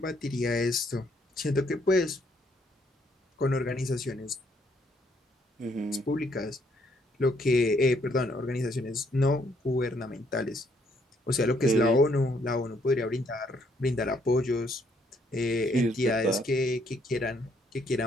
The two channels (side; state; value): both; normal; correlation 0.69